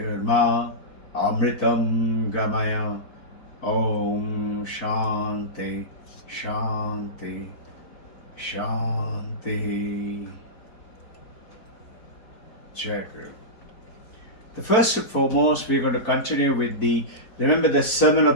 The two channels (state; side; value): late; right; 4.4 ms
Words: Amritam Gamaya. Om Shanti Shanti Shanti. Jai Guru. The first and foremost, we're going to continue with remember the Sermon